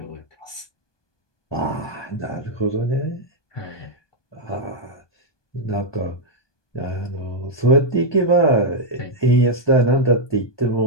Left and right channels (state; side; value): late; right; 1.2 ms